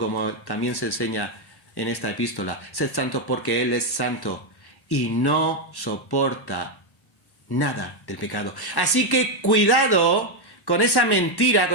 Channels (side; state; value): right; late; 1.1 ms